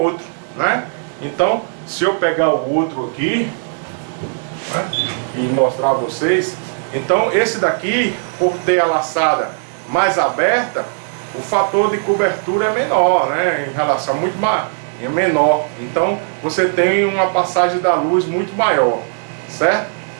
né? Então se eu pegar o outro aqui, né, e mostrar a vocês, Então esse daqui, por ter a laçada mais aberta, o fator de cobertura é menor, né? Em relação muito mais, é menor. Então você tem uma passagem da luz muito maior, certo?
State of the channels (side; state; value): left; silent; digital silence